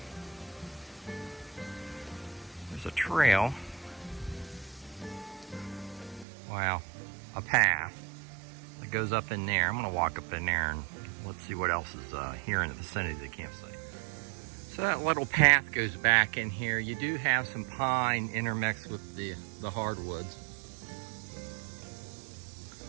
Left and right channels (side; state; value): left; drops out; at 6.2 s